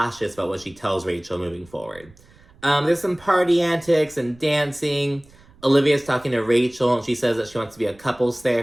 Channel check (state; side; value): noise; right; rumble, 26 dB below the sound